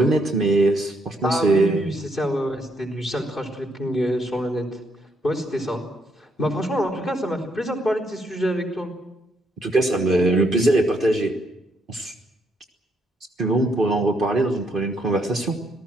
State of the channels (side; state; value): both; normal; correlation 0.74